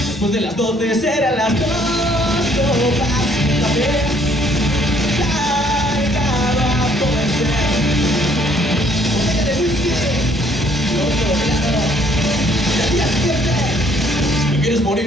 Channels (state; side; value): normal; both; correlation 0.63